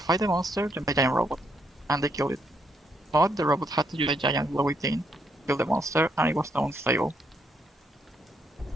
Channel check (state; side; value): normal; both; correlation 0.75